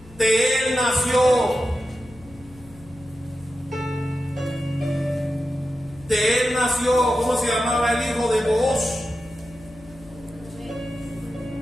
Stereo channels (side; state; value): left; noise; hum, 22 dB below the sound